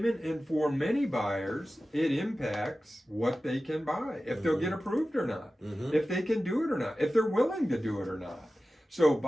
and for many buyers, it impacts what they can buy, if they'll get approved or not, if they can do it or not, if they're willing to do it or not. So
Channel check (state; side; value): normal; both; correlation 0.95